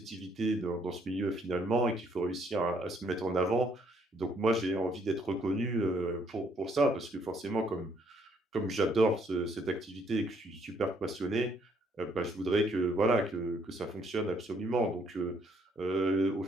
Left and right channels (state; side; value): normal; both; correlation 0.68